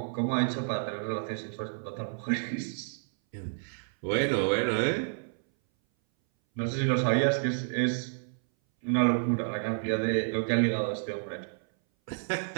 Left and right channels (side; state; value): left; silent; 58 dB below the other